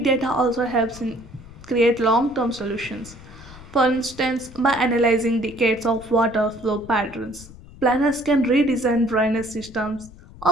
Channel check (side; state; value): left; noise; rumble, 19 dB below the sound